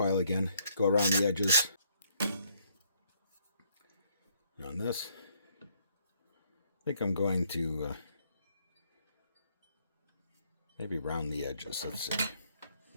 again, go around the edges. And on this, I think I'm going to maybe round the edges. Let's see.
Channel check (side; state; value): both; inverted; correlation -0.69